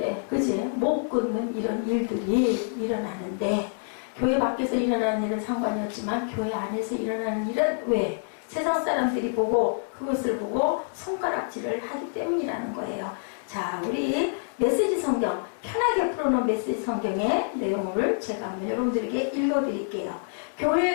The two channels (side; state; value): right; silent; digital silence